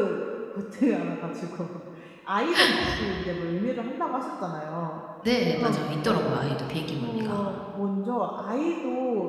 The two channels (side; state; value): both; identical; correlation 1.00